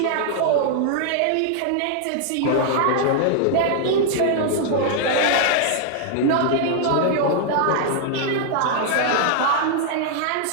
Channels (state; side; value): different; both; correlation -0.01